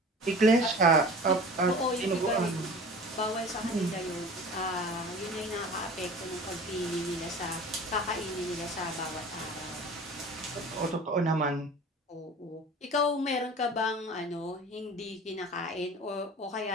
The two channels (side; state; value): both; normal; correlation 0.40